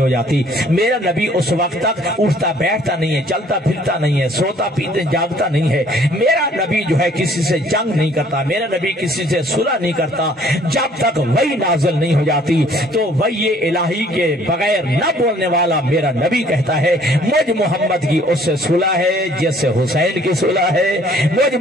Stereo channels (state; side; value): normal; both; correlation 0.58